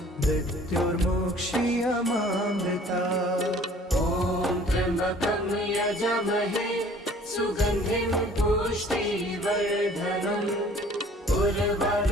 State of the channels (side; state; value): both; normal; correlation 0.53